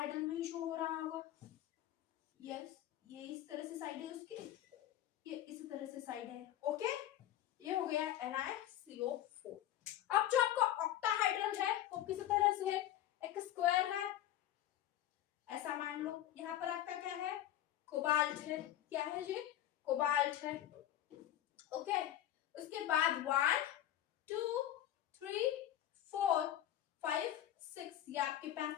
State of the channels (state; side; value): quieter; right; 12.4 dB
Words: में ही शो हो रहा होगा। यस, ये इस तरह से साइड है उसकी, ये इस तरह से साइड है। ओके, ये हो गया NiCO4। अब जो आपका ऑक्टाहाइड्रल है वो किस तरह से है, एक स्क्वायर है ऐसा मान लो। यहाँ पर आपका क्या है, कोबाल्ट है। क्या है जी, कोबाल्ट है। ओके, उसके बाद 1 2 3 4 5 6 ये आपके